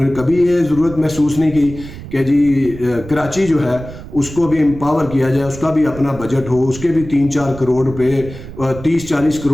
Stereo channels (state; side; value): noise; right; rumble, 13 dB below the sound